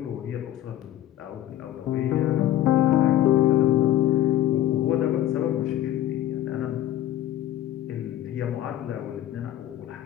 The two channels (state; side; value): quieter; right; 12.8 dB